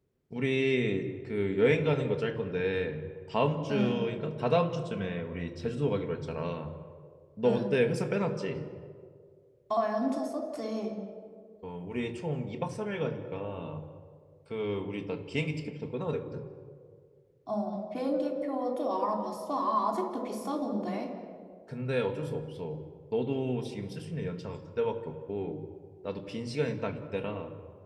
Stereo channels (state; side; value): identical; both; correlation 1.00